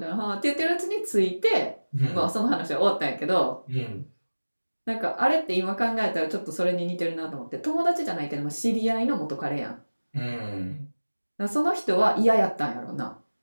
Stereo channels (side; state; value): both; inverted; correlation -1.00